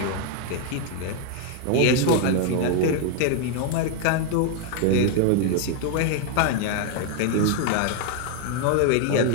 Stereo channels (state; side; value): different; both; correlation 0.00